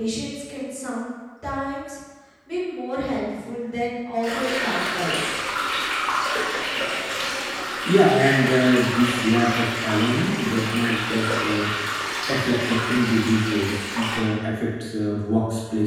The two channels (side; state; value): both; identical; correlation 1.00